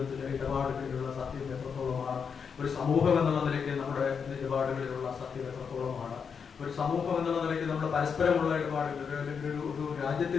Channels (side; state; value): right; quieter; 6.3 dB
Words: ഇടപാടുകളിലുള്ള സത്യം എത്രത്തോളമാണ്? ഒരു സമൂഹം എന്നുള്ള നിലയ്ക്ക് നമ്മുടെ ഇടപാടുകളിലുള്ള സത്യം എത്രത്തോളമാണ്? സമൂഹം എന്നുള്ള നിലയ്ക്ക് നമ്മൾ പരസ്പരമുള്ള ഇടപാടുകൾ, അല്ലെങ്കിൽ ഒരു